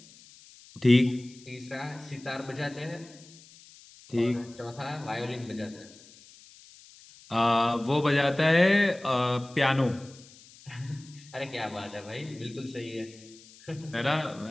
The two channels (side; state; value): left; noise; hiss, 23 dB below the sound